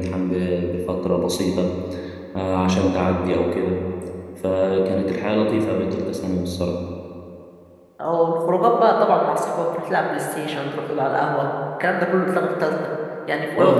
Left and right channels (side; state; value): both; identical; correlation 1.00